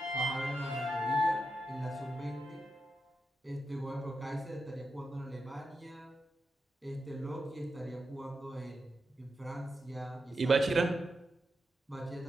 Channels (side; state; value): both; normal; correlation 0.87